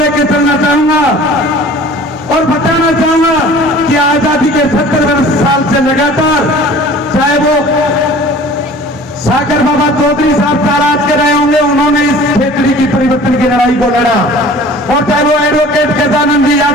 चलना चाहूंगा और बताना चाहूंगा कि आजादी के 70 साल से लगातार, चाहे वो सागर बाबा चौधरी साहब ताराज के रहे होंगे, उन्होंने इस खेतड़ी की परिवर्तन की लड़ाई को लड़ा, और चाहे वो एडवोकेट गजानंद जी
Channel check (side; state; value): both; normal; correlation 0.46